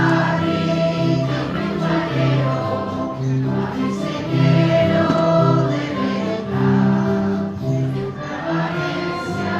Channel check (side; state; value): both; identical; correlation 1.00